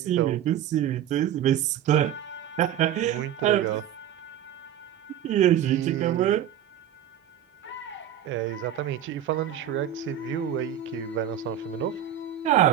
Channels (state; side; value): quieter; left; 10.6 dB